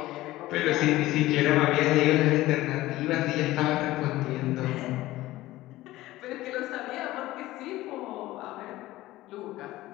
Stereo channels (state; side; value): quieter; right; 16.9 dB